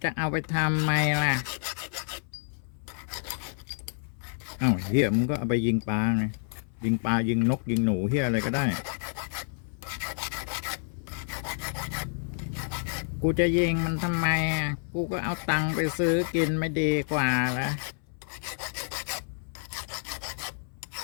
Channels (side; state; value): right; silent; 59 dB below the other